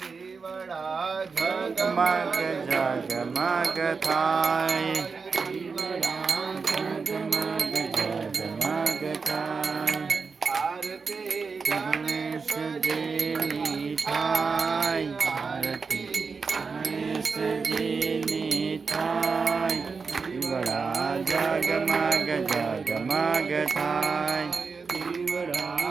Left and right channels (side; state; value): left; quieter; 5.0 dB